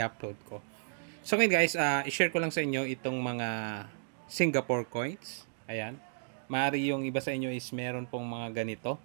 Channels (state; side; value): silent; left; digital silence